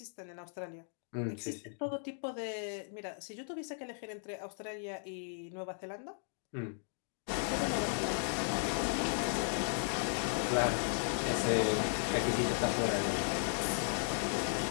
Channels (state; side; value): silent; right; digital silence